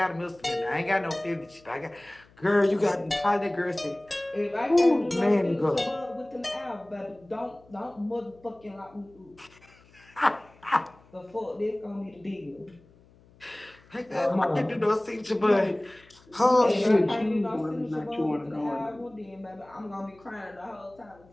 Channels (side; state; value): left; noise; hum, 28 dB below the sound